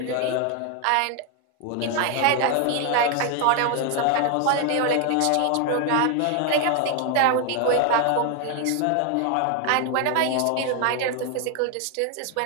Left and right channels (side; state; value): both; different; correlation 0.01